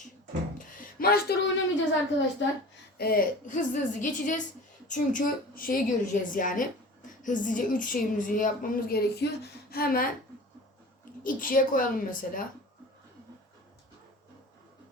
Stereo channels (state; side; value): normal; both; correlation 0.39